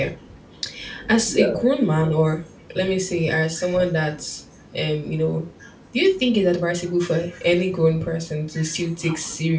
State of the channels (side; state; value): both; identical; correlation 1.00